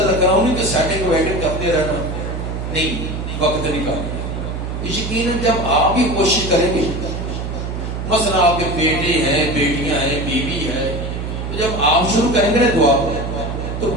رکھنا، انہیں کی سیٹنگ ویٹنگ کرتے رہنا، نہیں وقت نکالنا. یقیناً جب آپ بھی کوشش کریں گے، مثلا آپ کے بیٹے ہیں بیٹیاں ہیں بیوی ہے، تو جب آپ شروع کریں گے نا دعا تو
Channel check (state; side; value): noise; right; hum, 5 dB below the sound